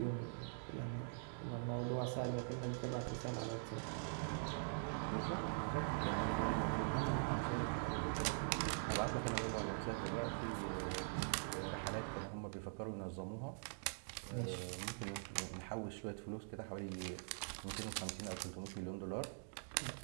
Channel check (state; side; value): silent; left; digital silence